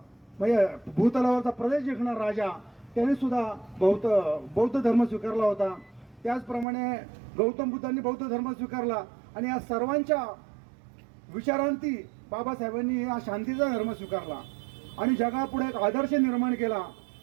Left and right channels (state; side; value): drops out; left; at 6.7 s